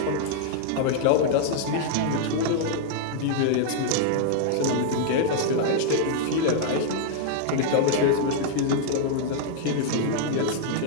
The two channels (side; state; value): both; different; correlation -0.01